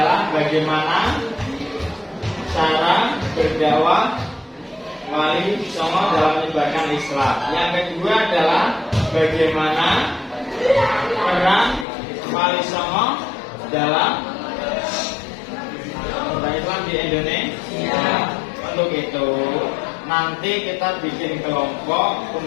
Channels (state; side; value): drops out; right; at 11.9 s